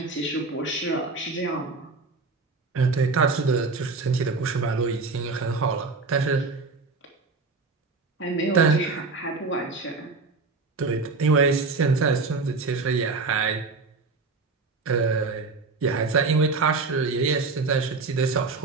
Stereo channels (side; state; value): left; quieter; 4.1 dB